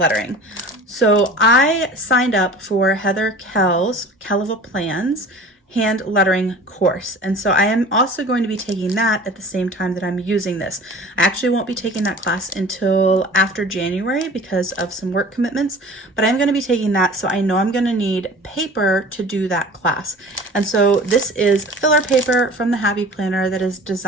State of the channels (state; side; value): normal; both; correlation 0.42